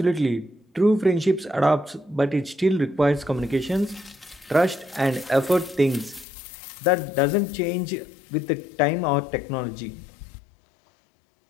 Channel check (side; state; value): right; drops out; at 6.2 s